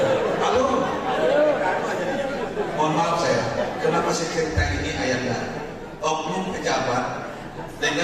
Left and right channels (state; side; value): identical; both; correlation 1.00